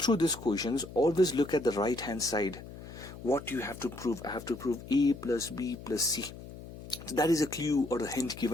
these questions, always look at the right hand side. What you have to prove? I have to prove a plus b plus c. So that is a clue or a hint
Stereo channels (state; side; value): noise; left; hum, 14 dB below the sound